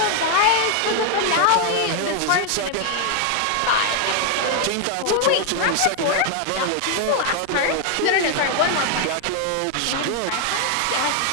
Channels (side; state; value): both; different; correlation 0.00